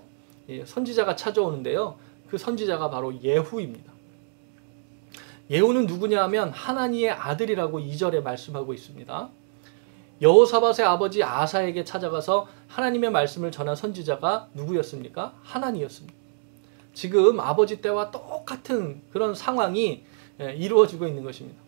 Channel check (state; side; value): silent; left; digital silence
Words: 선지자가 찾아오는데요, 그 선지자가 바로 예후입니다. 예후는 누구냐 하면 하나니의 아들이라고 2절에 말씀하고 있습니다. 여호사밧의 아버지 아사에게 찾아가서 하나님의 말씀을 전한 선지자가 누구였습니까? 하나니였습니다. 지금 아버지 때와 똑같은 그런 상황이 이루어지고 있는 것입니다.